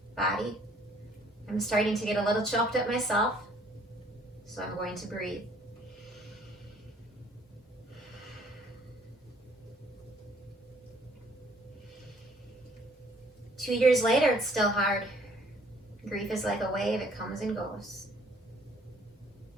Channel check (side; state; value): both; normal; correlation 0.60